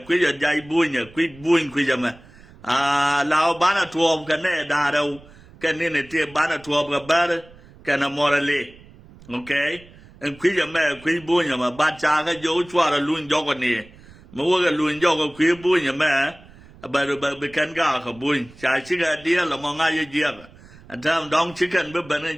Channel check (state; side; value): noise; right; rumble, 23 dB below the sound